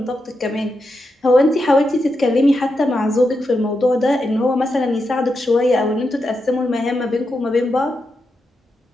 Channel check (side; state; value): both; normal; correlation 0.86